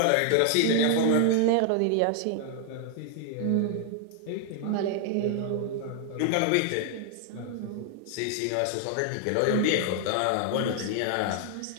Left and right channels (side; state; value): both; different; correlation 0.00